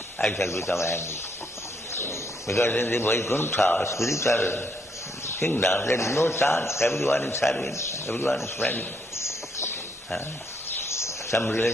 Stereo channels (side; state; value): both; normal; correlation 0.73